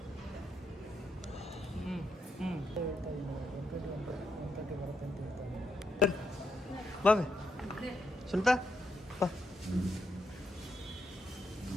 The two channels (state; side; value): normal; both; correlation 0.79